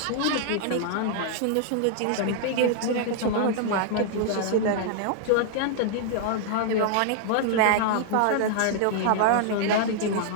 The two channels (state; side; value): different; both; correlation -0.01